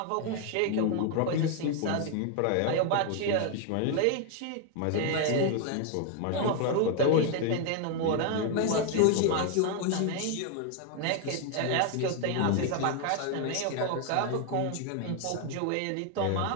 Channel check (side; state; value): both; different; correlation 0.00